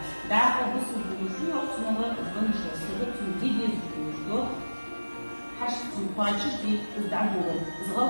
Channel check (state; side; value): inverted; both; correlation -1.00